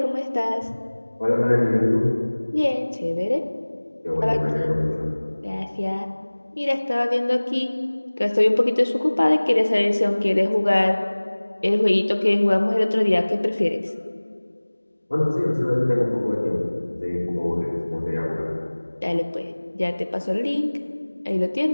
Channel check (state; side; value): inverted; both; correlation -1.00